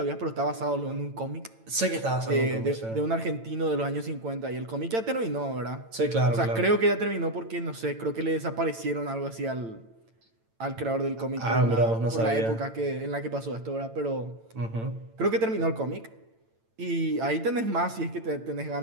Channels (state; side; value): late; left; 8.9 ms